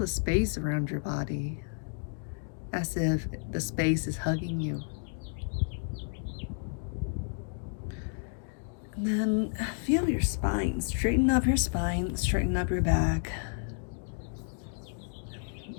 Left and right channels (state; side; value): silent; right; 56 dB below the other